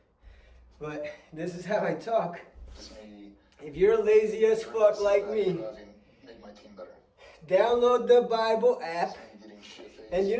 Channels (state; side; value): identical; both; correlation 1.00